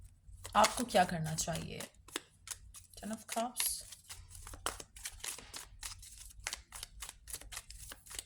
आपको क्या करना चाहिए? 10 of Cups,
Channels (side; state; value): both; identical; correlation 1.00